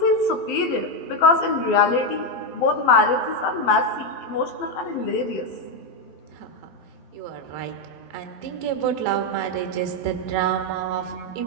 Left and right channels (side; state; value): right; late; 12 ms